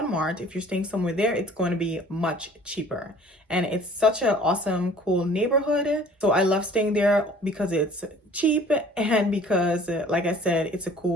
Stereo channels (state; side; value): normal; both; correlation 0.51